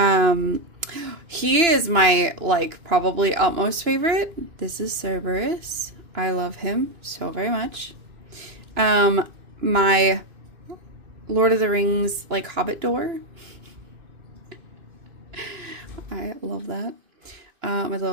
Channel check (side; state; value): left; late; 2.9 ms